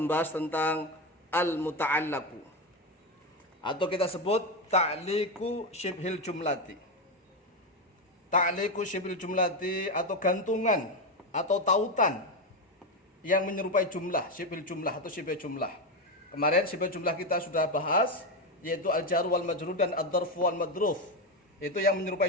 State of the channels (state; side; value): normal; both; correlation 0.11